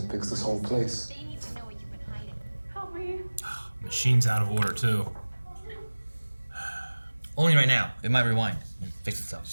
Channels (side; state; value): both; inverted; correlation -1.00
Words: fix this whole place. They need to know where you've been hiding. Help me. Machine's out of order too. Only right now. It might rewind and fix itself.